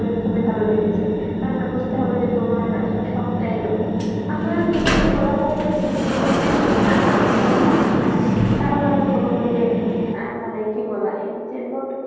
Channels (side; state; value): both; identical; correlation 1.00